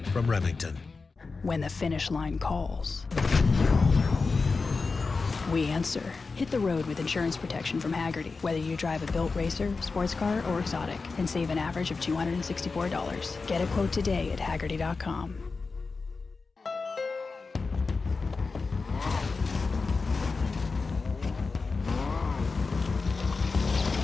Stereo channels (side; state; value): right; quieter; 4.3 dB